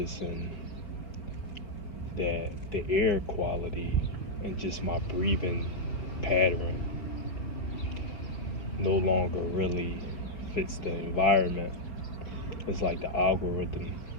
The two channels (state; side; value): late; right; 4.8 ms